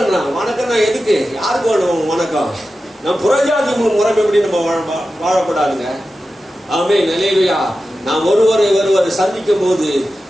வணக்கம்னா எதுக்கு? யாருக்கு வேணும் வணக்கம்? நம்ம புறஜாதி முறைப்படி நம்ம வாழப்படாதுங்க. ஆமென். அல்லேலூயா. நாம் ஒருவரை சந்திக்கும் போது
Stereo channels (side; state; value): both; normal; correlation 0.93